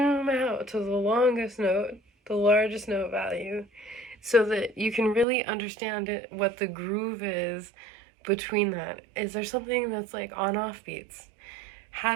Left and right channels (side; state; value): left; drops out; at 5.2 s